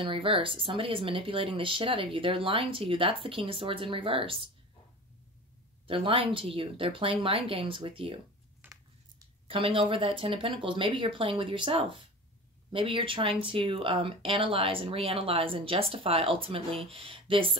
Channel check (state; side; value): normal; both; correlation 0.34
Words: reverse. Somebody is manipulating the shit out of you. They're lying to you. That's the King of Swords in reverse. They're lying to you. They're playing mind games with you. Coming over that Ten of Pentacles. Maybe you're playing with yourself. Maybe you're trying to analyze and reanalyze and justify ultimately this